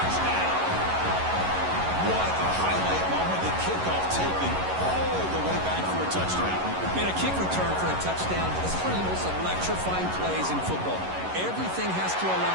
What a highlight moment. The kickoff taken all the way back for a touchdown. Man, a kick return for a touchdown is one of the most electrifying plays in football. Everything has to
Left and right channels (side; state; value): left; late; 11 ms